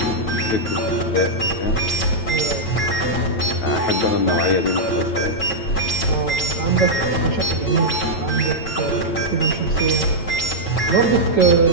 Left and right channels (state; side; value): late; right; 9.1 ms